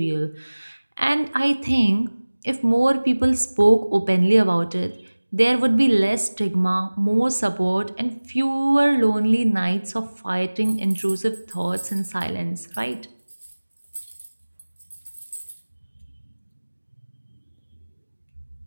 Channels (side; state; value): both; inverted; correlation -1.00